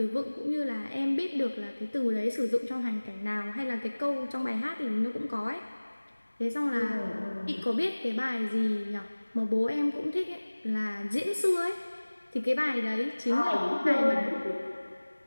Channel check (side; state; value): both; inverted; correlation -1.00